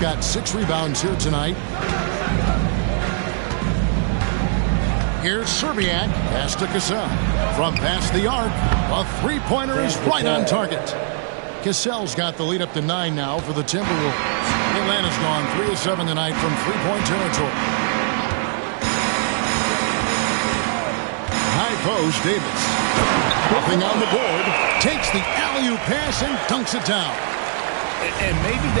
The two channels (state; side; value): silent; left; 60 dB below the other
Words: 6 rebounds here tonight. Here's Serbiak. Pass to Cassell. From past the arc, a three-pointer is right on target. Cassell's got the lead up to 9 now for the Timberwolves. Atlanta's gone 3 of 7 tonight from three-point territory. High post, Davis. Nothing on the board. Takes the alley-oop pass and dunks it down. And maybe